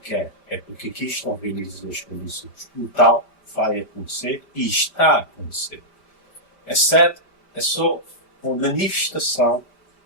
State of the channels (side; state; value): right; late; 5.0 ms